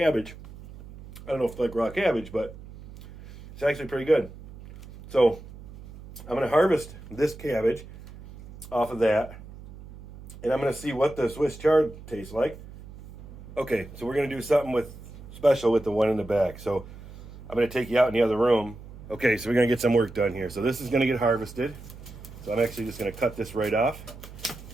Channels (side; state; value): right; noise; hum, 16 dB below the sound